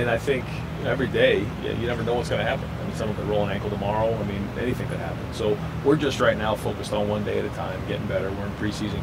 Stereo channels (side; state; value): both; identical; correlation 1.00